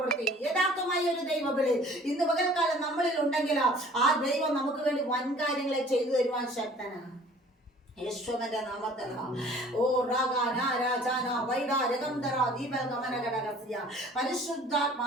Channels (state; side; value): normal; both; correlation 0.51